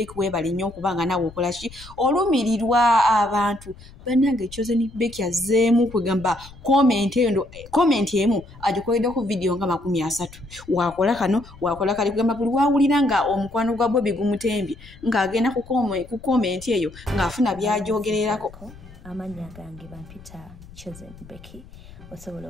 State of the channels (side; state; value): left; noise; rumble, 20 dB below the sound